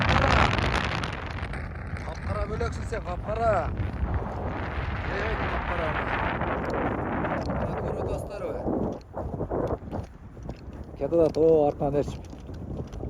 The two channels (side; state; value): both; identical; correlation 1.00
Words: Kapkara bölöksün sen, kapkara. Evet, kapkara. Bakırı dostları. Kedadat o arkan erçip.